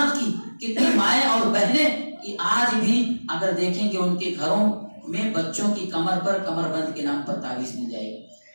کی کتنی مائیں اور بہنیں کہ آج بھی اگر دیکھیں کہ ان کے گھروں میں بچوں کی کمر پر کمر بند کے نام پر تعویذ مل جائے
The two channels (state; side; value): inverted; both; correlation -1.00